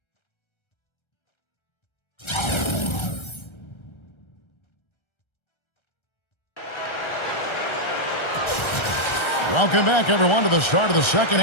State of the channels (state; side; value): late; right; 1.3 ms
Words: Welcome back, everyone, to the start of the second